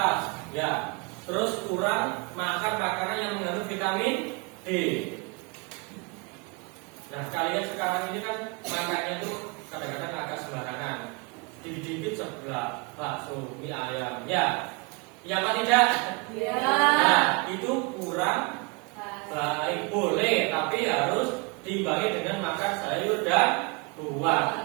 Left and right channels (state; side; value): quieter; left; 30.8 dB